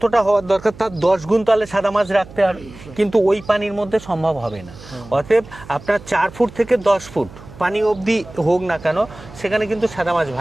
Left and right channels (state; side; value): noise; right; hum, 18 dB below the sound